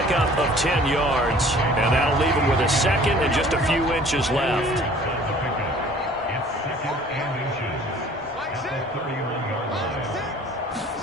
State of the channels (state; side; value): normal; both; correlation 0.51